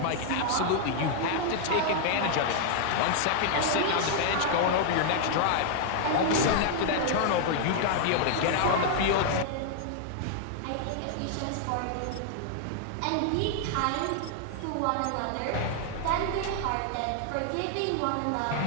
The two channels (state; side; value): different; both; correlation 0.00